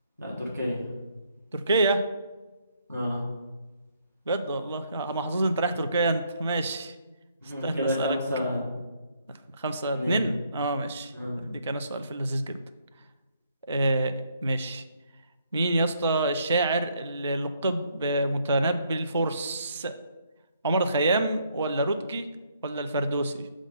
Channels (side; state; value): both; inverted; correlation -0.70